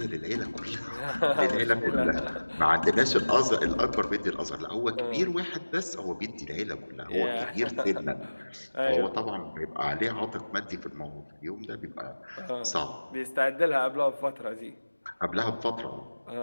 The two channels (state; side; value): inverted; both; correlation -1.00